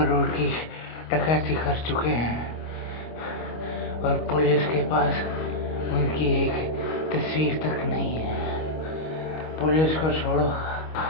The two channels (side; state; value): right; late; 25 ms